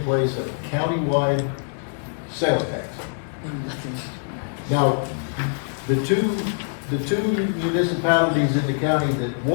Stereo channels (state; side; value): silent; right; digital silence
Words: place a countywide sales tax. Now, the two municipalities in the county that